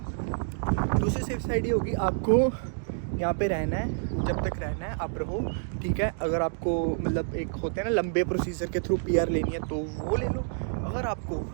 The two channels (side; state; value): left; silent; digital silence